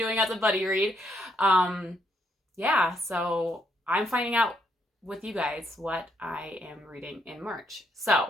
as a buddy read. Yeah, so I'm finding out with you guys what I am reading in March.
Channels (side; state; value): both; normal; correlation 0.74